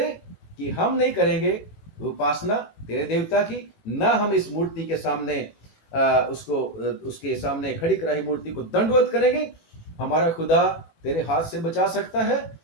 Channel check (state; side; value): late; right; 18 ms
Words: कि हम नहीं करेंगे उपासना तेरे देवता की, ना हम इस मूर्ति के सामने उसके सामने खड़ी कराई मूर्ति को दंडवत करेंगे। हमारा खुदा तेरे हाथ से बचा सकता है,